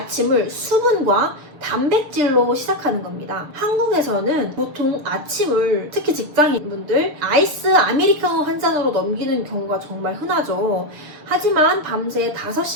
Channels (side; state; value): left; late; 6.8 ms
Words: 수분과 단백질로 시작하는 겁니다. 한국에서는 보통 아침을 특히 직장인분들 아이스 아메리카노 한 잔으로 넘기는 경우가 정말 흔하죠. 하지만 밤새